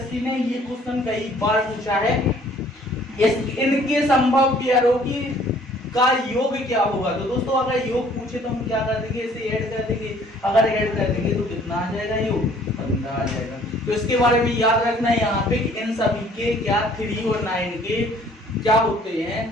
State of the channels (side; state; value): both; normal; correlation 0.57